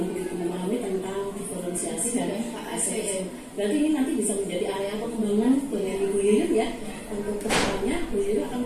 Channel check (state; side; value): identical; both; correlation 1.00